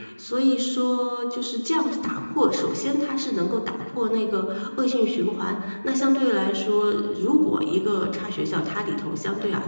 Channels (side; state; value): both; inverted; correlation -1.00